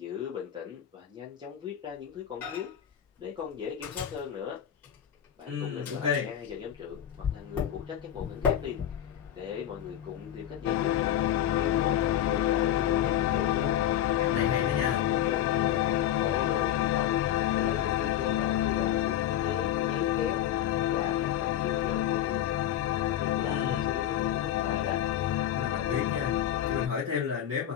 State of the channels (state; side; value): quieter; right; 11.0 dB